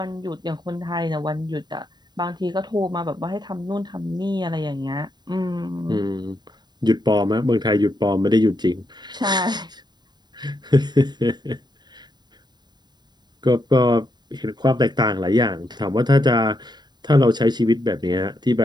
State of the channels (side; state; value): left; late; 0.21 ms